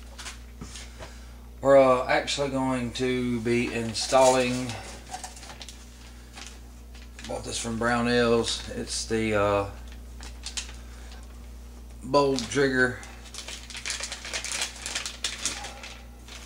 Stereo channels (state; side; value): identical; both; correlation 1.00